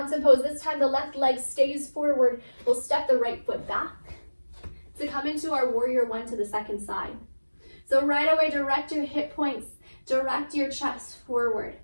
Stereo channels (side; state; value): both; inverted; correlation -1.00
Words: pose, this time the left leg stays forward. We'll step the right foot back to come into our warrior one to the second side. So right away, direct your hip points, direct your chest forward.